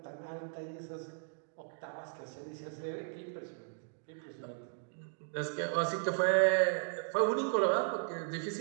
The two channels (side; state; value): left; silent; digital silence